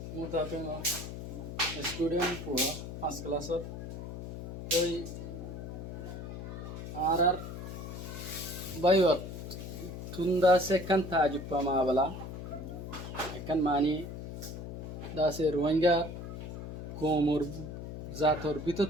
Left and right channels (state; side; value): noise; left; hum, 8 dB below the sound